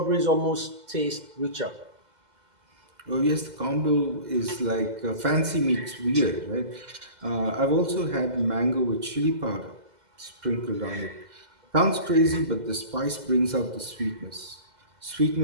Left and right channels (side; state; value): left; late; 2.0 ms